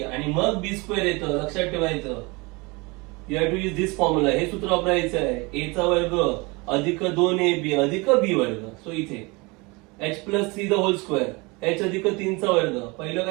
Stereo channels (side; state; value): left; quieter; 26.4 dB